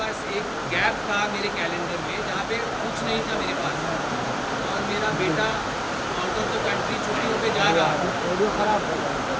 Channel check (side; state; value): both; identical; correlation 1.00